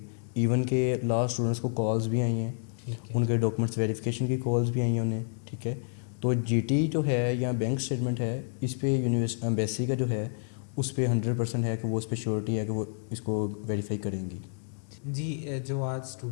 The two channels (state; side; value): silent; right; 58 dB below the other